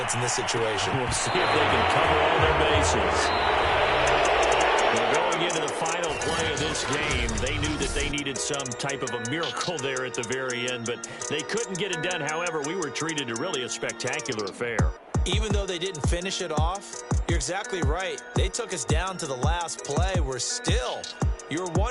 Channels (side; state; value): both; identical; correlation 1.00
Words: in this situation. We'll see if they can cover all their bases. Well, going into the final play of this game, they knew that they needed some type of a miracle there at the very end, but they couldn't get it done. However, we were treated to really a spectacular affair. Even though they didn't finish it off, you're exactly right. They took us down to the last play. We're still, you're